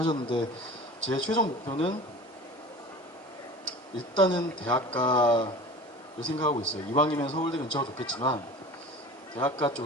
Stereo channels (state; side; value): normal; both; correlation 0.38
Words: 제 최종 목표는 일단은 대학가를 생각하고 있어요. 이왕이면 서울대 근처가 좋겠지만 대학가